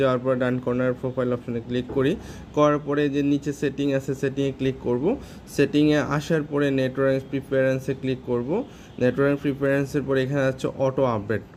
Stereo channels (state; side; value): identical; both; correlation 1.00